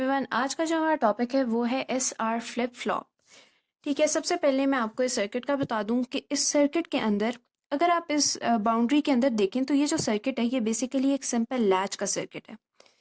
आज का जो हमारा टॉपिक है वो है SR फ्लिप फ्लॉप। ठीक है, सबसे पहले मैं आपको इस सर्किट का बता दूं कि इस सर्किट के अंदर अगर आप इस बाउंड्री के अंदर देखें तो ये जो सर्किट है ये बेसिकली एक सिंपल लैच का सर्किट है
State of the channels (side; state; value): both; identical; correlation 1.00